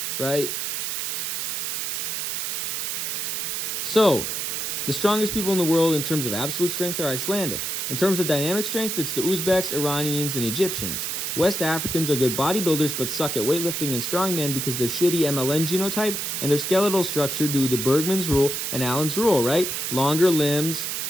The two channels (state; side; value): noise; right; hiss, 2 dB below the sound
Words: right? So, the strongest people in the world in terms of absolute strength are Icelandic. In terms of dynamic strength, it's the Uzbeks, Iranians, and Egyptians. West Africans are good bodybuilders but suck at weightlifting and strongman because they're shitty MLN genotype and their skeletal structure due to Bergman's rule and Allen's rule, right? Longer limbs,